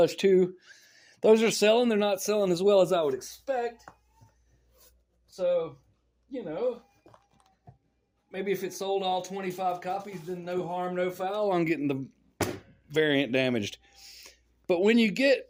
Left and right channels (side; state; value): both; identical; correlation 1.00